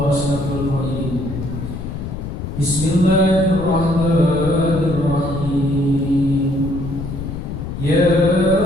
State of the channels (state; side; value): noise; left; rumble, 7 dB below the sound